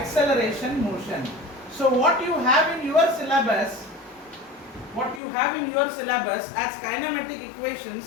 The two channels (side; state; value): right; drops out; at 5.2 s